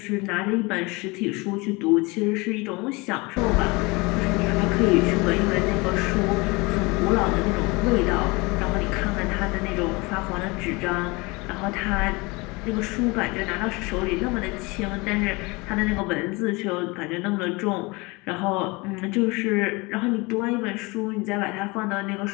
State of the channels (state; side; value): quieter; right; 25.5 dB